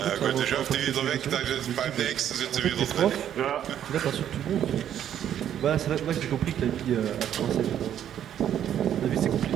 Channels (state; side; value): quieter; left; 10.2 dB